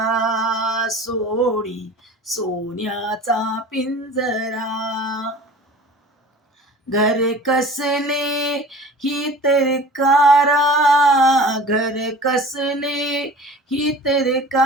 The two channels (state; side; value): normal; both; correlation 0.41